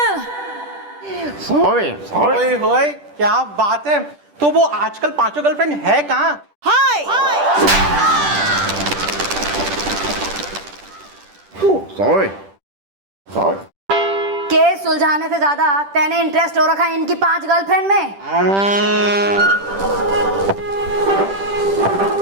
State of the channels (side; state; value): left; late; 10 ms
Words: ओए होए, क्या बात है। तो वो आजकल 5 गर्लफ्रेंड है कहाँ? सॉरी केस सुलझाने से ज्यादा तेने इंटरेस्ट हो रखा है इनकी 5 गर्लफ्रेंड में।